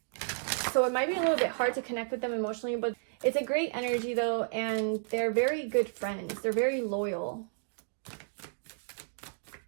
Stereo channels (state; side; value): silent; left; digital silence